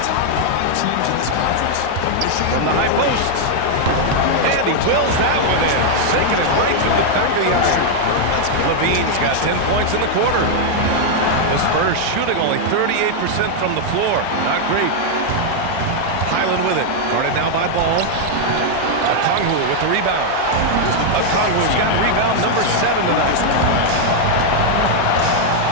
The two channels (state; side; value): different; both; correlation 0.00